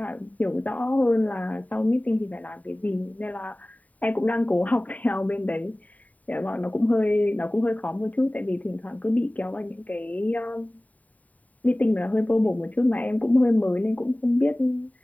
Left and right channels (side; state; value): right; late; 0.072 ms